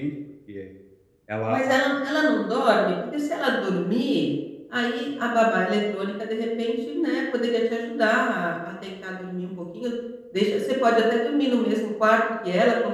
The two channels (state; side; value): identical; both; correlation 1.00